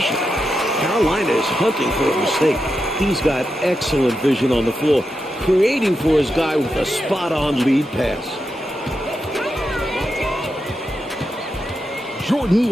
Carolina is hunting for a mistake. He's got excellent vision on the floor, creating for his guy with a spot-on lead pass. Jordan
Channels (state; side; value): normal; both; correlation 0.87